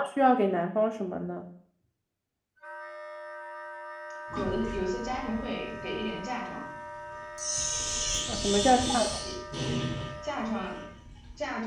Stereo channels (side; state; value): both; identical; correlation 1.00